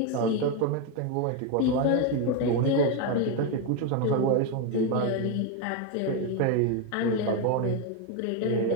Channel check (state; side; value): different; both; correlation 0.02